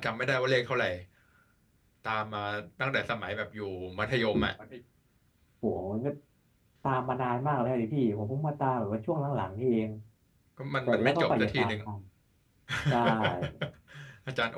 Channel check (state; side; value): identical; both; correlation 1.00